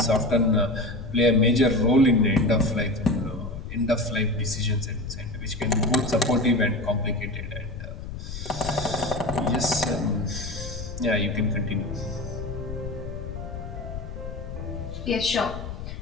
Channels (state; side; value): noise; left; rumble, 8 dB below the sound